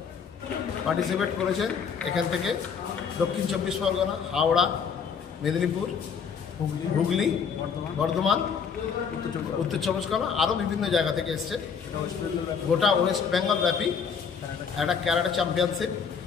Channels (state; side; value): quieter; right; 6.5 dB